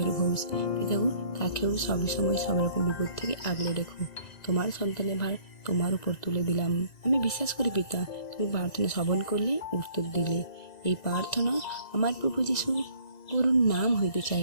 ঘোষ, পিতাগো, তাকেও সবসময় সব রকম বিপদ থেকে আগলে রেখো। তোমার সন্তানের ভার তোমার উপর তুলে দিলাম। আমি বিশ্বাস করি পিতা, তুমি প্রার্থনা শ্রবণ করলে, উত্তর দিলে। এই প্রার্থনা আমার প্রভু যিশু গুরুর নাম হইতে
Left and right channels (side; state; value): right; late; 2.0 ms